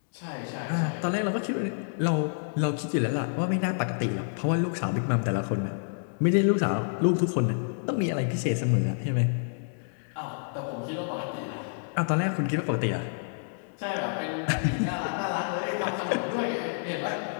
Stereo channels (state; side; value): silent; right; digital silence